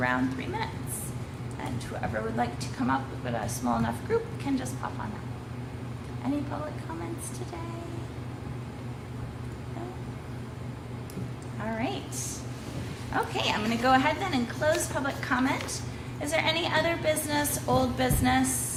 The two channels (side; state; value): both; identical; correlation 1.00